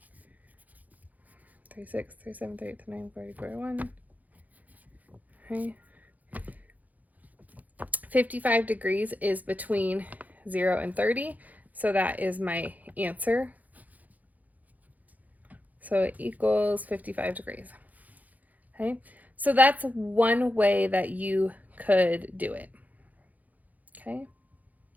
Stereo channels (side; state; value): left; late; 0.079 ms